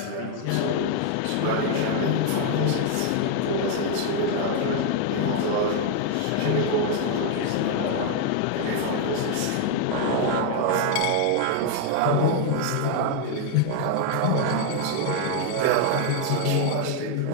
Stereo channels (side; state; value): both; different; correlation 0.00